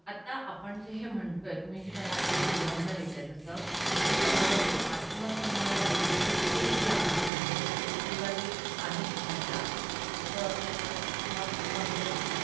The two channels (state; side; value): drops out; left; at 7.3 s